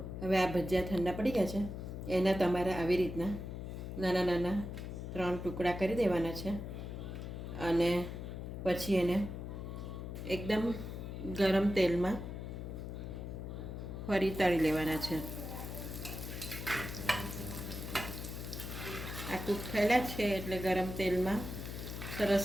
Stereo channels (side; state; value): left; noise; hum, 7 dB below the sound